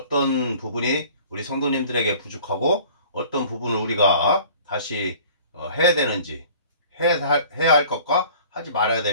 부분이 우리 성도님들에게 부족하고 어떤 부분을 우리가 다시 해야 되는지, 해야 할 것과 하지 말아야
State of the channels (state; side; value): inverted; both; correlation -0.48